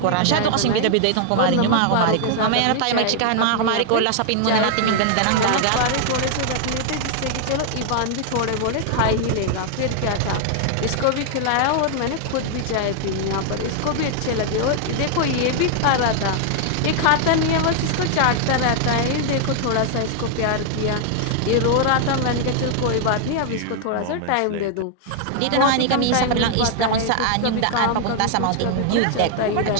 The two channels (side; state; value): both; different; correlation 0.00